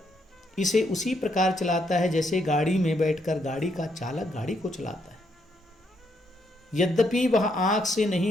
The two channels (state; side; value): normal; both; correlation 0.75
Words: इसे उसी प्रकार चलाता है जैसे गाड़ी में बैठकर गाड़ी का चालक गाड़ी को चलाता है। यद्यपि वह आँख से